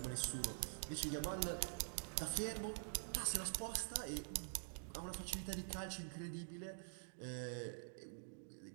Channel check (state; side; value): silent; left; digital silence